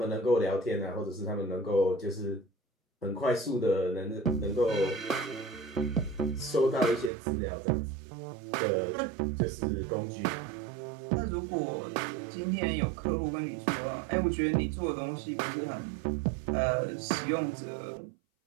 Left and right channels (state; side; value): drops out; left; at 7.1 s